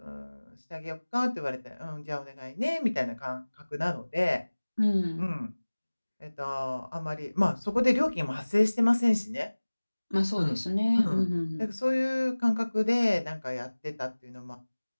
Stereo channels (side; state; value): both; inverted; correlation -1.00